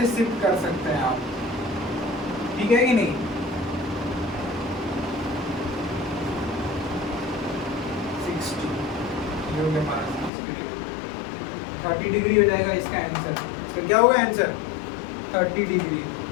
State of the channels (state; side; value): drops out; right; at 10.3 s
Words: शिफ्ट कर सकते हैं आप। ठीक है कि नहीं, ये हो गया हमारा 30 डिग्री हो जाएगा इसका आंसर। इसका क्या होगा आंसर 30 डिग्री।